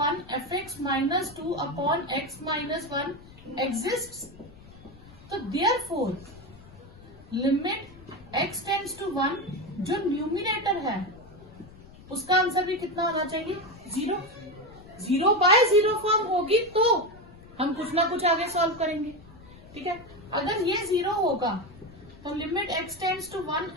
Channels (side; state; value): left; noise; rumble, 21 dB below the sound